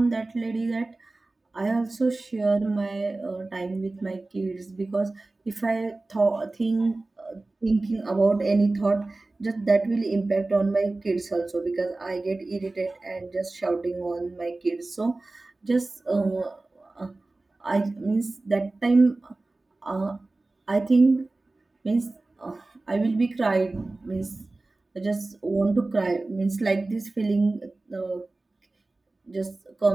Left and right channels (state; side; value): quieter; left; 3.1 dB